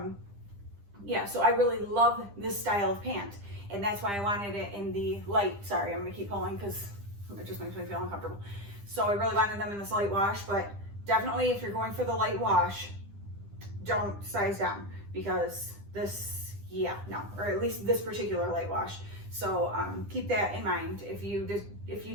yeah, so I really love this style of pant. And that's why I wanted it in the light. Sorry, I'm gonna keep pulling because it just makes me feel uncomfortable. So I really wanted them in this light wash, but definitely if you're going for the light wash, don't size down because this, yeah, no, or at least this particular light wash. So keep that in mind. If you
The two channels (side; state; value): left; late; 10 ms